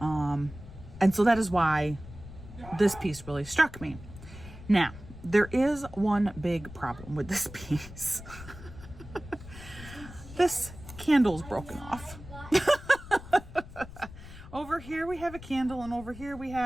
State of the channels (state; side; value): noise; left; rumble, 15 dB below the sound